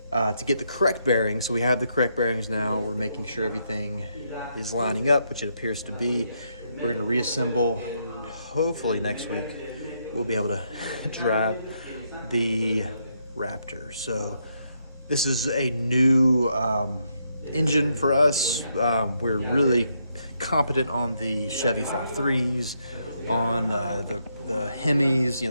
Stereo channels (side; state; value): both; inverted; correlation -0.77